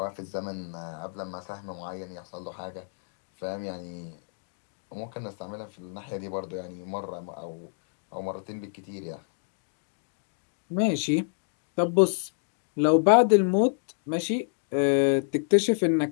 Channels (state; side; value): silent; right; digital silence